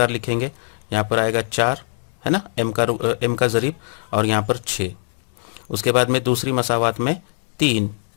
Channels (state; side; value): silent; right; 65 dB below the other